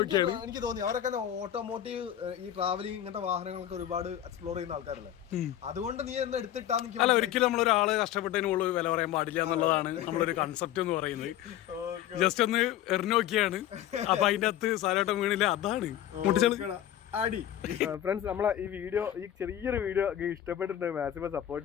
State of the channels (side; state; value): right; quieter; 11.8 dB